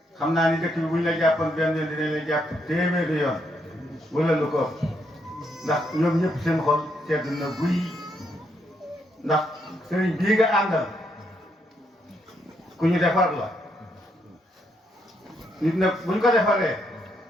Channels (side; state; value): both; normal; correlation 0.76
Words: xam naa ni dëkk bi buñ la jàppoon benn yoon dinañ la jàpp téeméeri yoon wala lu ko ndax ñoom ñëpp seen xol sedd na guy ndax sëriñ bii nga àndal ku ñu defar la nit nag buñ ko defaree